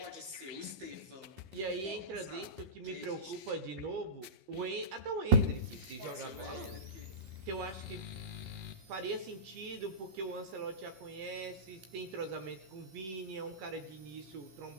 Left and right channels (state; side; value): late; left; 16 ms